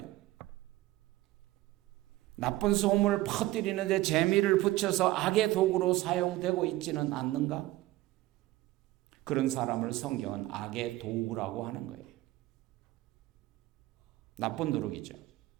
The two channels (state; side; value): quieter; left; 17.2 dB